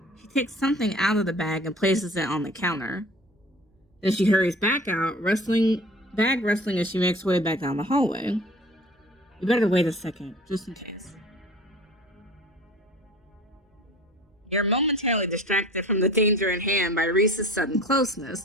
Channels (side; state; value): both; normal; correlation 0.44